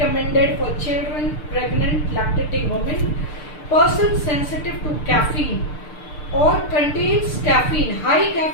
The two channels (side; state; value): right; late; 6.7 ms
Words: for children, pregnant, lactating women, person sensitive to caffeine और contains caffeine, high